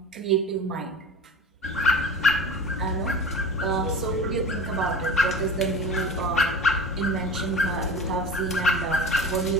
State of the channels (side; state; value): both; normal; correlation 0.34